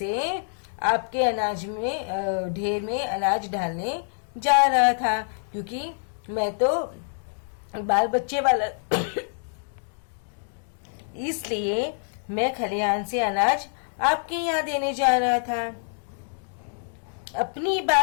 आपके अनाज में ढेर में अनाज डालने जा रहा था, क्योंकि मैं तो बाल बच्चे वाला इसलिए मैं खलिहान से अनाज आपके यहाँ देने जा रहा था। अपनी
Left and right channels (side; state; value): right; silent; digital silence